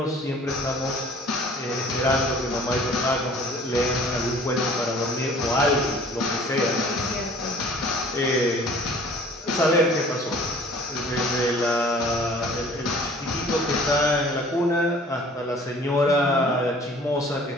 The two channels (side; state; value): both; normal; correlation 0.51